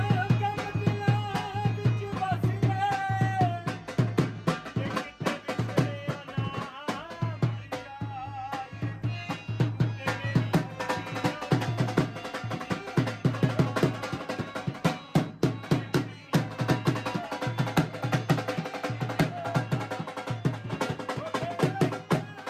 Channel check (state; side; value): identical; both; correlation 1.00